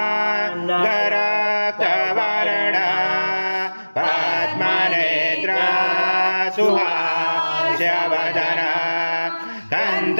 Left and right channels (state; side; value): inverted; both; correlation -1.00